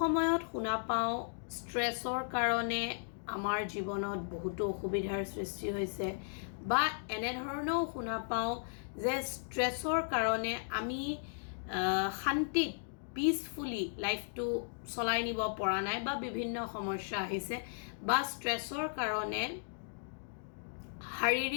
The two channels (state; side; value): silent; right; digital silence